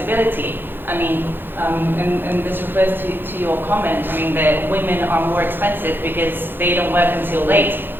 I mean, and this refers to your comment, I mean, that women are more expensive because they don't work until late.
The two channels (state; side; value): late; left; 0.099 ms